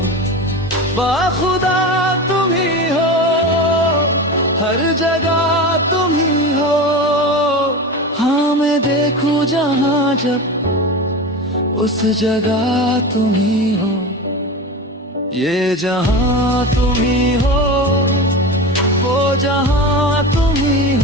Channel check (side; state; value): both; normal; correlation 0.26